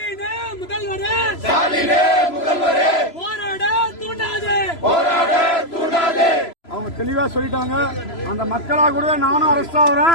ஸ்டாலினே முதல்வரே போராட தூண்டாதே போராட தூண்டாதே. அவங்க தெளிவா சொல்லிட்டாங்க. அந்த மக்களா கூட நானும் அரெஸ்ட்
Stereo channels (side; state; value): right; late; 3.0 ms